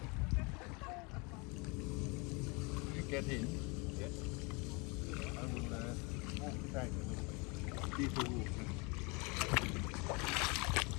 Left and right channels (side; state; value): right; quieter; 29.5 dB